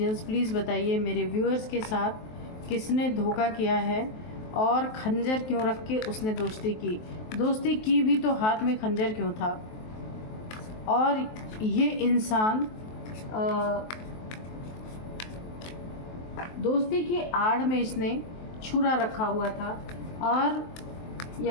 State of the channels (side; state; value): right; late; 23 ms